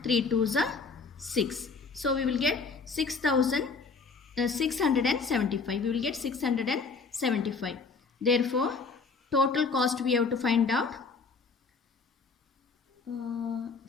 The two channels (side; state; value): right; quieter; 4.7 dB